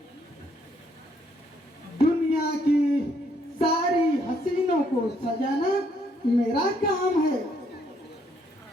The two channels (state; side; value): normal; both; correlation 0.70